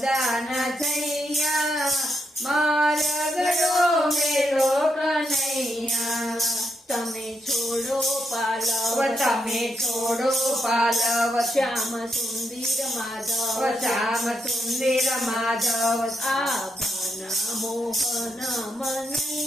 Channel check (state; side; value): normal; both; correlation 0.81